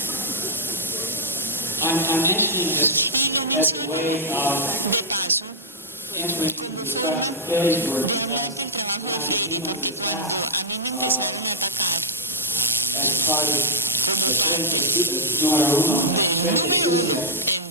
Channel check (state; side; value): normal; both; correlation -0.08